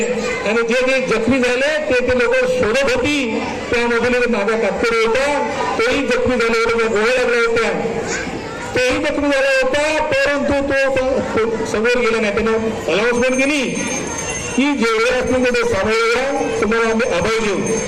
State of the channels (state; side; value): identical; both; correlation 1.00